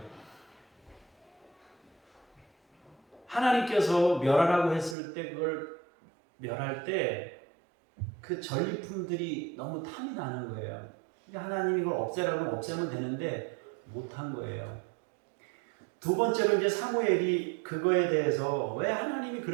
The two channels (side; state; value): left; drops out; at 5.0 s